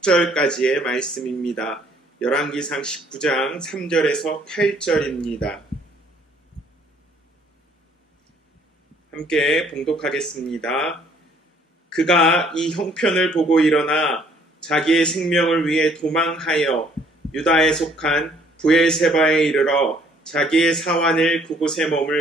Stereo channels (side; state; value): both; normal; correlation 0.62